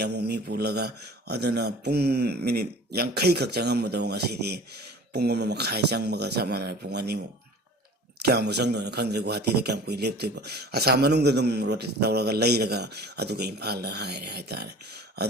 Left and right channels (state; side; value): normal; both; correlation 0.43